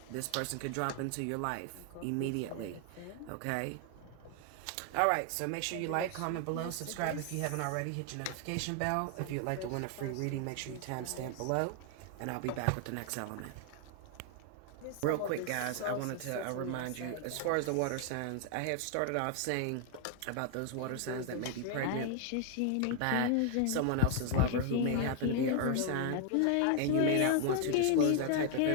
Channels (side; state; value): both; different; correlation 0.00